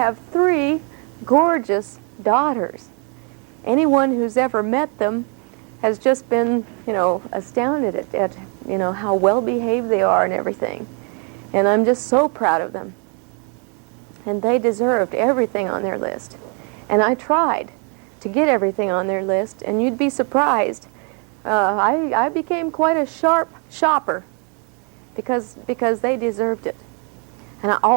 3 gorgeous daughters. Anyone who's ever met them has just been, you know, astounded at you know, how well behaved they are and everything. And I'm just so proud of them. And they deserved everything on their list. And I tried to get everything on their list, and you'd be surprised. I became quite a sharp shopper because they deserved it. And I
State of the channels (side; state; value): left; quieter; 37.6 dB